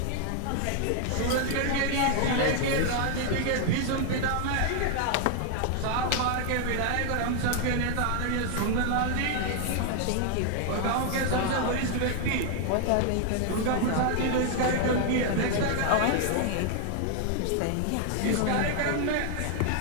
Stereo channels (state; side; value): different; both; correlation 0.00